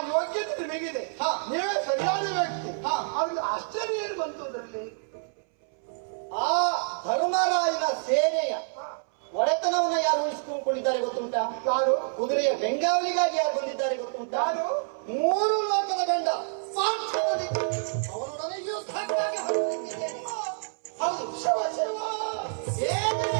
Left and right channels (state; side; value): silent; left; 60 dB below the other